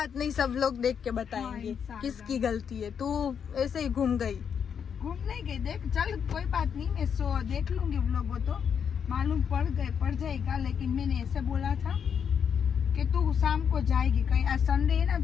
नहीं, सब लोग देख के बताएंगे किसकी गलती है। तू ऐसे ही घूम गई। घूमने गई, देख चल कोई बात नहीं, मैं देख लूंगी व्लॉग, वो तो मालूम पड़ जाएगा। लेकिन मैंने ऐसे बोला था कि तू शाम को जाएगी कहीं, आज संडे है ना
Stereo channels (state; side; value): quieter; right; 7.4 dB